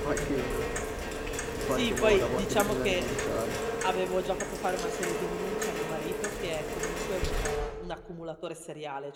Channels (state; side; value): identical; both; correlation 1.00